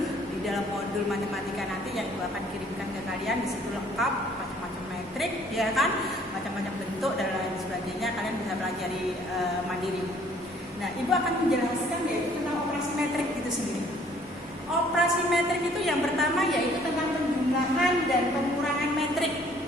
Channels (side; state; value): both; normal; correlation 0.59